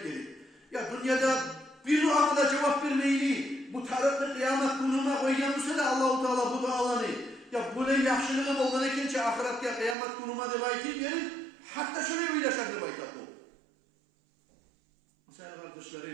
dedi. Ya dünyada bir duama da cevap vermeyeli bu taraflı kıyamet gününe koyganmışsa da Allah-u Teala bu dualarını ya bu ne yaxşılığım olgan ekençe ahiretke kıyamet günüme de bayt verin. Hatta şöyle bir yaşar de bayt bu. Mesela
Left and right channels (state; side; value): drops out; left; at 10.0 s